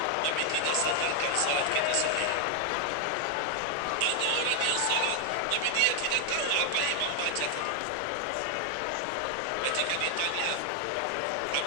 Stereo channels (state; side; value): different; both; correlation 0.00